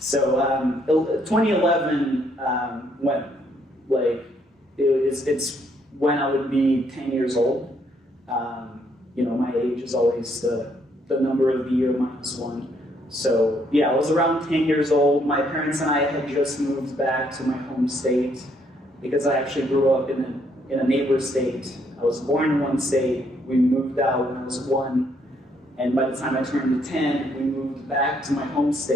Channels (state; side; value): normal; both; correlation 0.70